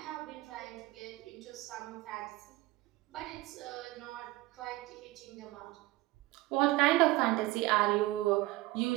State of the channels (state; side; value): quieter; left; 19.5 dB